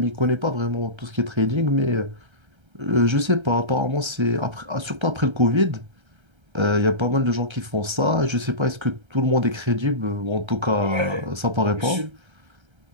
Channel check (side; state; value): left; late; 1.3 ms